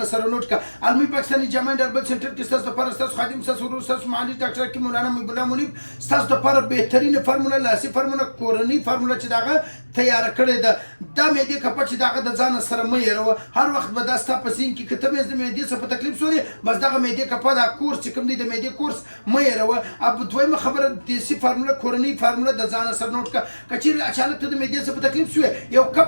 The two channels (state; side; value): inverted; both; correlation -1.00